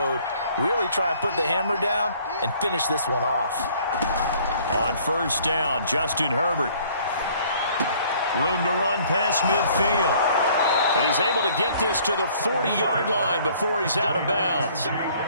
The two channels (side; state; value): both; inverted; correlation -0.58